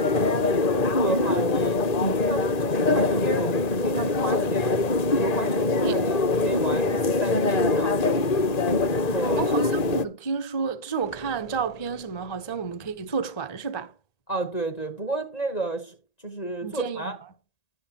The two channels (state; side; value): late; right; 1.8 ms